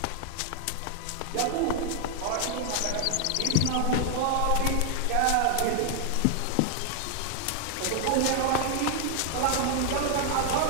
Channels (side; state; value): both; different; correlation 0.00